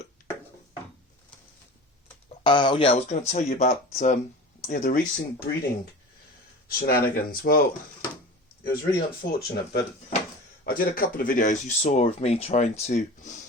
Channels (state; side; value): normal; both; correlation 0.35